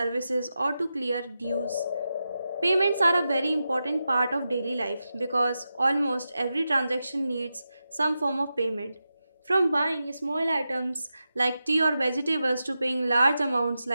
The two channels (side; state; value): both; inverted; correlation -0.90